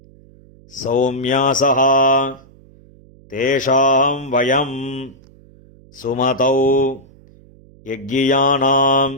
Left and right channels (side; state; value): right; noise; hum, 26 dB below the sound